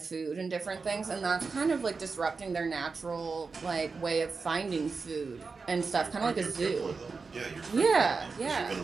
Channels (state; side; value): quieter; left; 4.6 dB